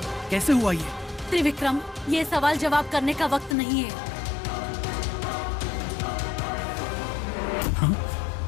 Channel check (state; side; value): drops out; right; at 3.6 s